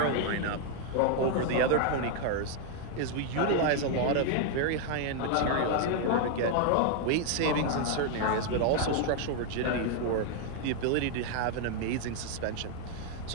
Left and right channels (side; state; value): both; different; correlation 0.00